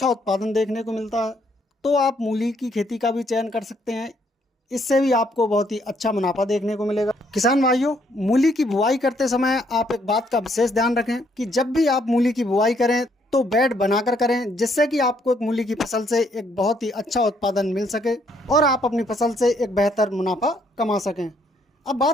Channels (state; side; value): normal; both; correlation 0.70